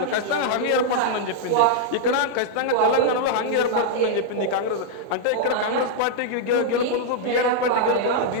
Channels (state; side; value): different; both; correlation -0.01